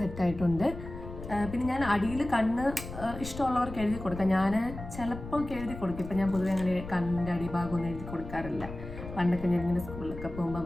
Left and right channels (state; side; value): noise; left; rumble, 11 dB below the sound